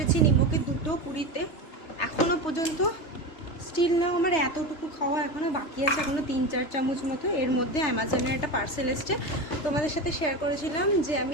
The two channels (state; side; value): late; right; 3.3 ms